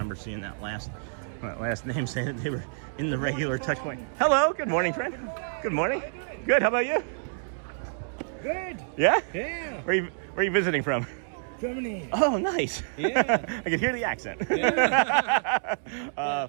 seeing that last name saying that they were in the regular touch point. Hello. Good morning, friend. Good morning. Good. How about you? Good. Yeah? Yeah. Where are you visiting from? Germany. Oh, nice. Yeah. I can hear the accent. Yeah.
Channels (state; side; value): silent; left; digital silence